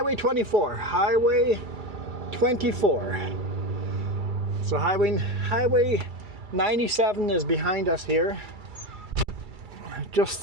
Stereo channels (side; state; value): left; late; 2.3 ms